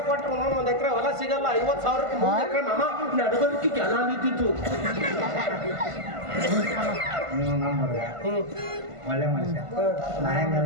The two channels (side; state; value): left; late; 1.5 ms